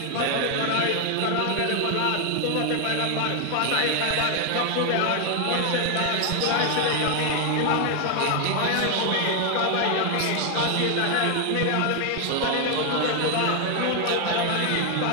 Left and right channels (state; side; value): different; both; correlation 0.01